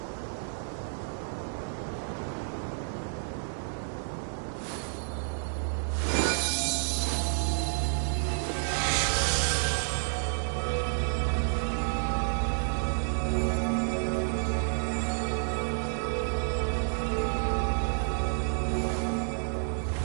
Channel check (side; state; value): left; silent; 58 dB below the other